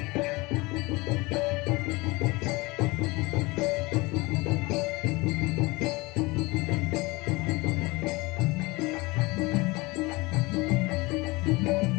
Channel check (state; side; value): quieter; right; 23.7 dB